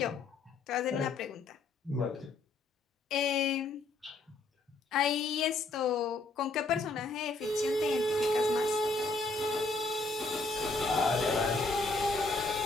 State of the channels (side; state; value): right; quieter; 3.4 dB